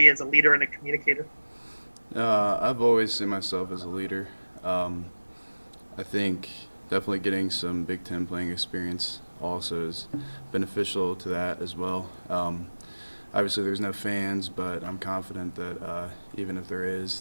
as a leader and a communicator? I've always seen myself as a leader. I think definitely getting some Big Ten playing experience also is beneficial to that as well. Obviously, there's no fans, but I'm confident that even if there is,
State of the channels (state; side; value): inverted; both; correlation -1.00